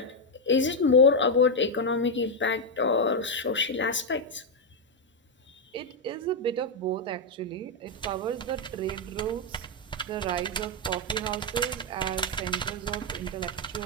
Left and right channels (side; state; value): both; normal; correlation 0.01